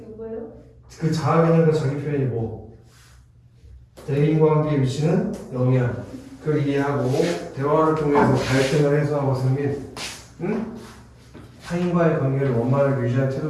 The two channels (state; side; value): identical; both; correlation 1.00